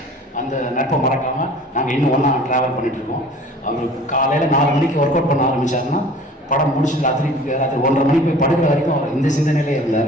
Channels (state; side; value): normal; both; correlation 0.46